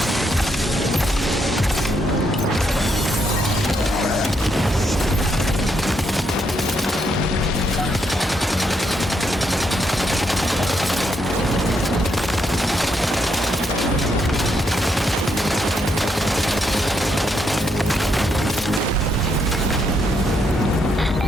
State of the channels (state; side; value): normal; both; correlation 0.77